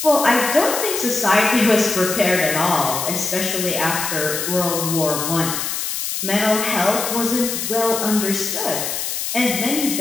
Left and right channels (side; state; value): left; noise; hiss, 3 dB below the sound